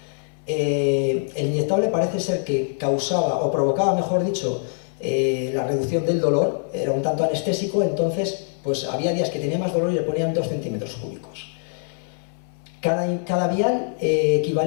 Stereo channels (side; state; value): right; silent; digital silence